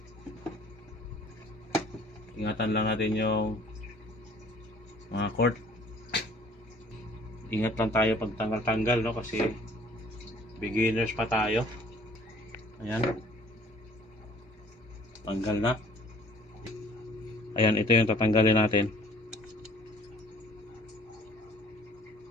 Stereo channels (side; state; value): both; normal; correlation 0.54